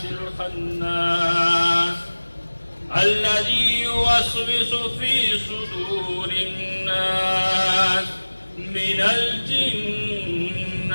الخناس الذي يوسوس في صدور الناس من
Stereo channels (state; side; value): inverted; both; correlation -1.00